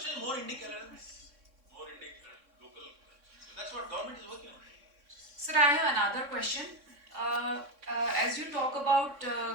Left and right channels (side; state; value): left; late; 3.6 ms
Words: more Indic LLMs, more Indic local. So that's what government is working on. Sir, I have another question. As you talk about